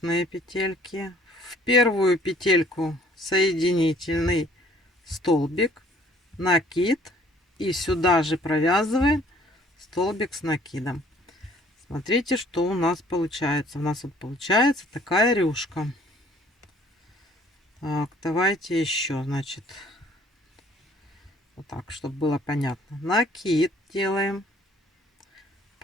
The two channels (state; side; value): normal; both; correlation 0.58